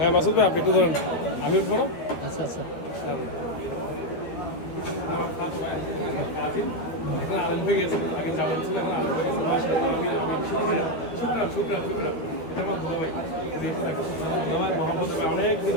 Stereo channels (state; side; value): late; right; 12 ms